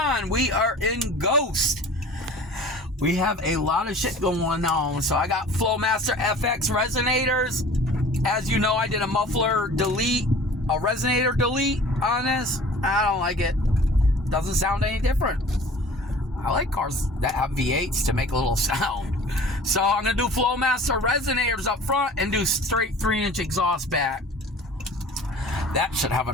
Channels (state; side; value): normal; both; correlation 0.45